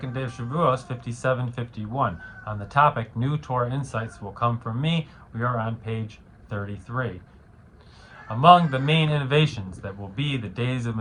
day of Shavuot 5751. On the topic, New Torah Insights Will Come From Me, we are on page 33. Among the main innovations that will be the days of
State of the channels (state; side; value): identical; both; correlation 1.00